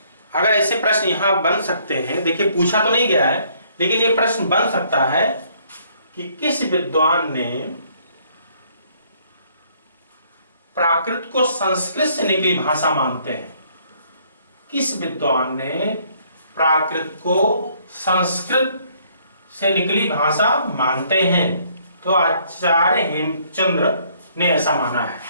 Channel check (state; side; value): inverted; both; correlation -0.64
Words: अगर ऐसे प्रश्न यहां बन सकते हैं, देखिए पूछा तो नहीं गया है लेकिन ये प्रश्न बन सकता है कि किस विद्वान ने प्राकृत को संस्कृत से निकली भाषा मानते हैं। किस विद्वान ने प्राकृत को संस्कृत से निकली भाषा मानते हैं? तो आचार्य हेमचंद्र ने ऐसा माना है।